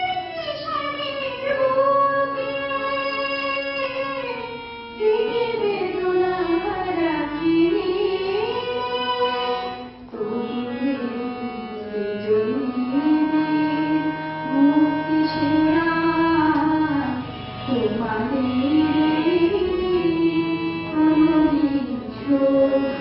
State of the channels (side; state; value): both; identical; correlation 1.00